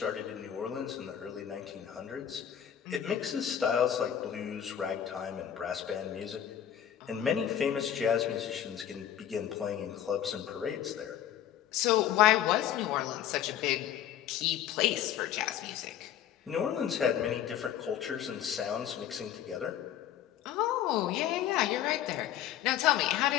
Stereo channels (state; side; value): quieter; right; 10.4 dB